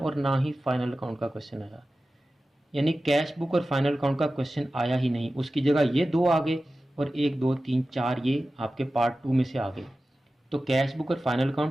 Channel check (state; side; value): normal; both; correlation 0.95